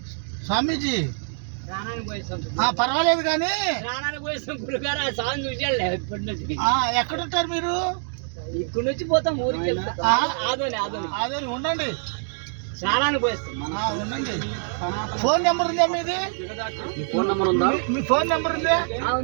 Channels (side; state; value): left; silent; 62 dB below the other